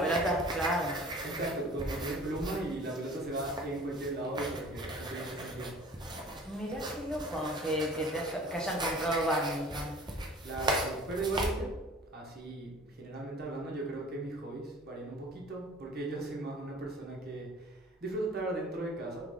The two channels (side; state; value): both; normal; correlation 0.46